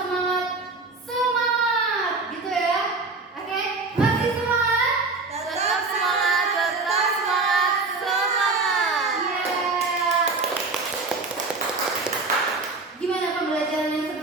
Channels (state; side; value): quieter; left; 3.8 dB